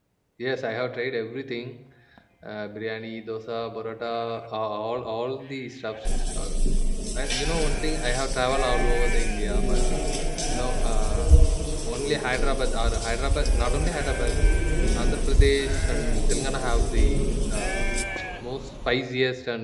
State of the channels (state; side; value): identical; both; correlation 1.00